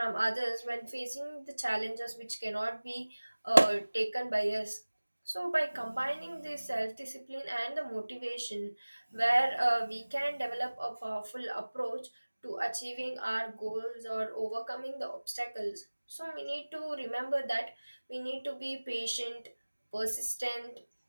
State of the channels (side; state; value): both; inverted; correlation -1.00